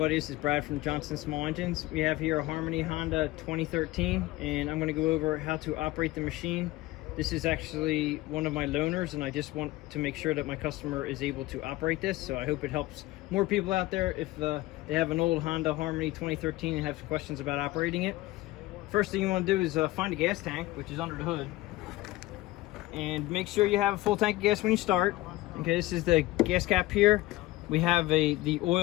this is Brad from Johnson Small Engines. We have here a Harmony Honda 2013, and I'm going to go over how to operate the machine. This is actually one of my loaners, and I just want to make sure that my customer is able to operate this, so I hope it helps more people out there if they have an old Honda Harmony 2013 and have questions about operating it. First thing you want to do is find a gas tank, which is under the hood, and make sure you have a full tank of gas when you start. Okay, this is the gas cap here. We have the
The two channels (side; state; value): right; quieter; 18.1 dB